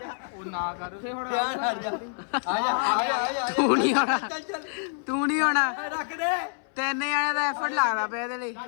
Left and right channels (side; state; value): right; silent; 60 dB below the other